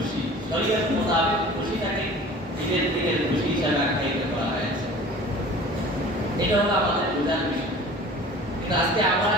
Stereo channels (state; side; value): normal; both; correlation 0.43